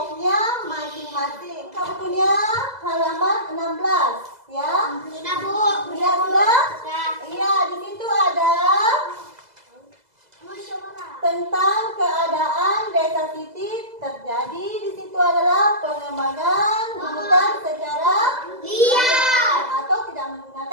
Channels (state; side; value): late; left; 2.0 ms